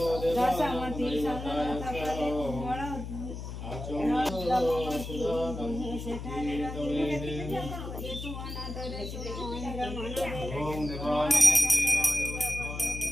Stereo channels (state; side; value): noise; left; hum, 8 dB below the sound